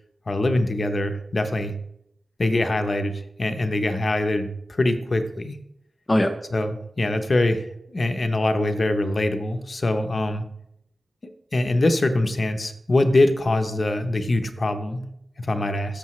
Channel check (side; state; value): both; normal; correlation 0.94